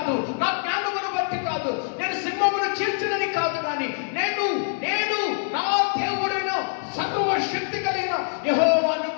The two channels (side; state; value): right; silent; digital silence